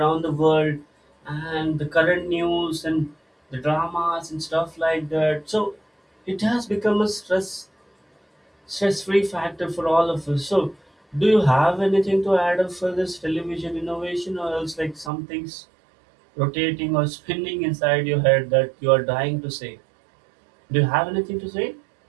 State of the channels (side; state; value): left; drops out; at 15.1 s